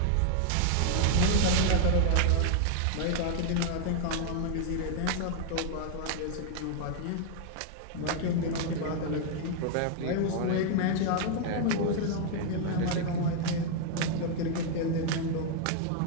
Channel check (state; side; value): different; both; correlation 0.00